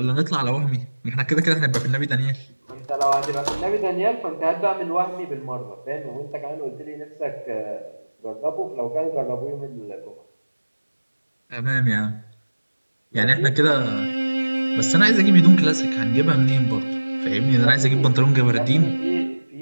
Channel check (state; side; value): inverted; both; correlation -1.00